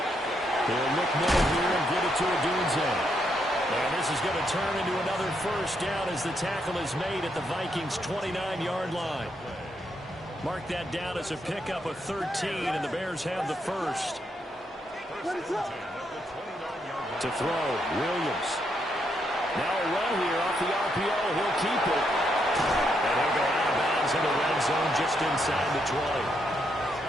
He'll look middle here and get it to Odunze. And this is going to turn into another first down as the tackle is made at the Vikings' 29-yard line. Mark that down as a pickup of 13, and the Bears have the first. To throw, Williams. Now a run here off the RPO. He'll keep it. And he'll go out of bounds in the red zone just inside the 20.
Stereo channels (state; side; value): normal; both; correlation 0.78